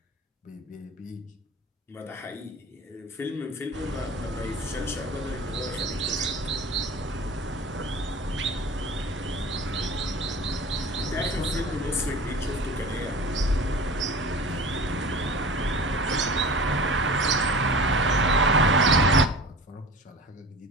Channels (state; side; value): normal; both; correlation 0.38